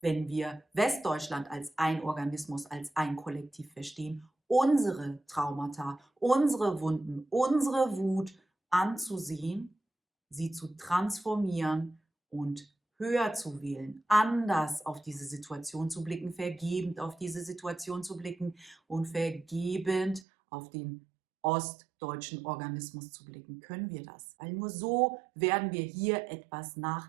wenn wir Westdeutschland als ein Organismus, als ein Kollektiv verstehen, unsere Traumata, unsere Wunden, unsere Wut anzusehen, sie zu transformieren und höher zu wählen, anders auf diese Situation zu blicken, vergebend auf diese Situation zu blicken und vergebend auf den ostdeutschen Organismus zu blicken. Können wir das? Weil nur so werden wir hier etwas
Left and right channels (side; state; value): left; drops out; at 20.2 s